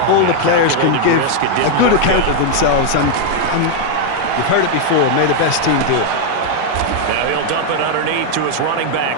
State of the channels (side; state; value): both; different; correlation 0.00